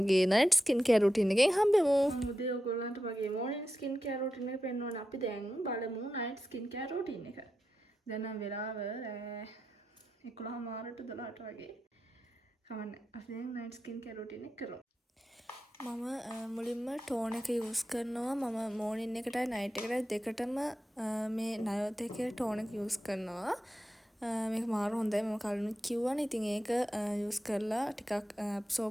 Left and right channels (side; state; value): both; normal; correlation 0.89